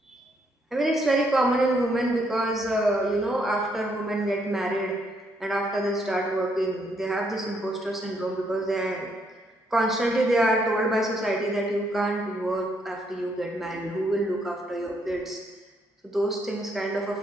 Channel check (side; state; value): both; normal; correlation 0.73